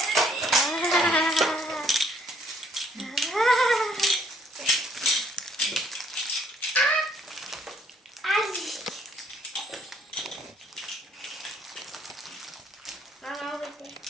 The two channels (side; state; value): both; normal; correlation 0.64